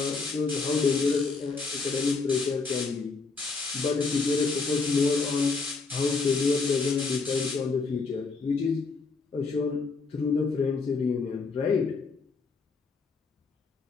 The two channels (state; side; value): quieter; right; 4.3 dB